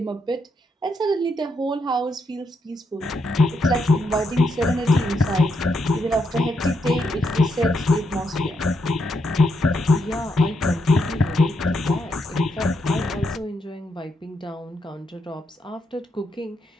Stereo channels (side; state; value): both; normal; correlation 0.79